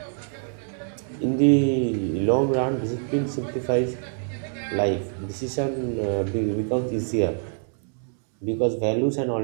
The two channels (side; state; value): left; silent; digital silence